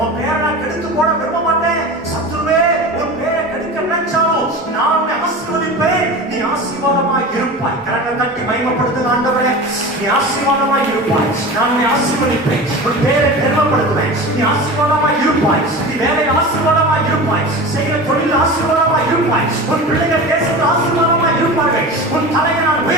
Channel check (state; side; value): normal; both; correlation 0.32